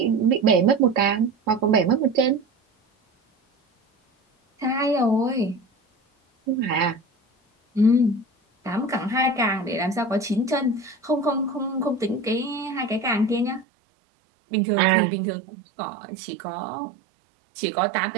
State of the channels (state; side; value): drops out; left; at 13.7 s